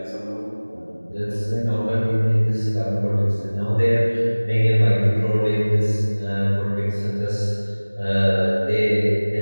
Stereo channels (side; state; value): both; inverted; correlation -1.00